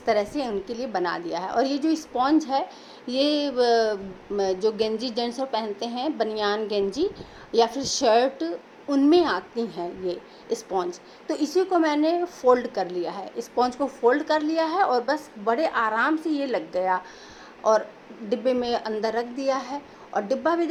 तरह से उनके लिए बना दिया है। और ये जो स्पॉन्ज है ये जो गेंजी जेंट्स पहनते हैं, बनियान गेंजी या फिर शर्ट, उनमें आती हैं ये स्पॉन्ज। तो इसी को मैंने फ़ोल्ड कर लिया है, स्पॉन्ज को फ़ोल्ड कर लिया है और बस बड़े आराम से ये लग गया और डिब्बे में अंदर रख दिया है। और डिब्बा भी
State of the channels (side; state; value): both; identical; correlation 1.00